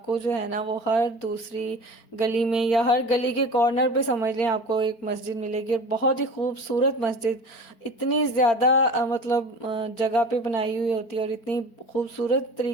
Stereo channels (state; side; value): late; right; 4.4 ms